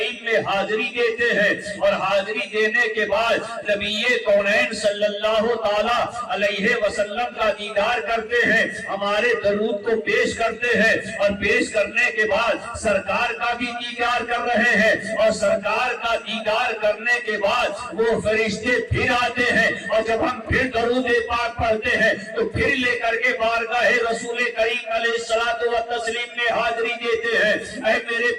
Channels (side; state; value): both; identical; correlation 1.00